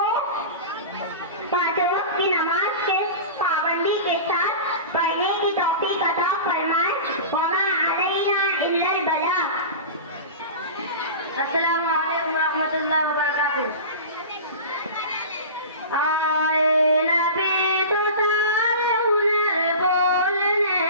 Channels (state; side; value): inverted; both; correlation -0.32